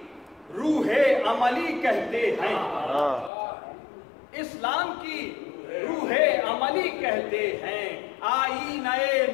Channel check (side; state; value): right; drops out; at 3.3 s